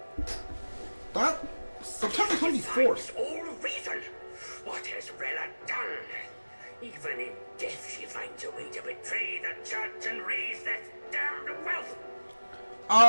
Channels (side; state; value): both; inverted; correlation -1.00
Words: That September 24th. All reason! What has Rella done? Even in death she finds a way to betray the church and raise that damned wealth!